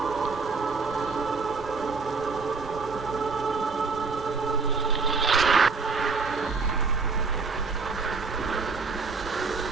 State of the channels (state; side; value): quieter; left; 4.5 dB